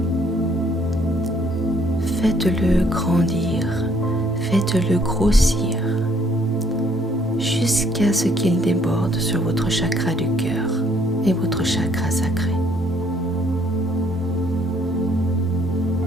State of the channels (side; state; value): both; normal; correlation 0.65